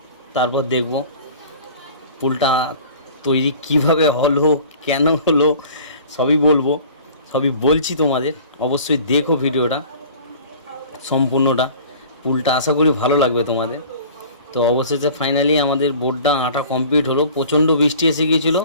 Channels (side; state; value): both; inverted; correlation -0.45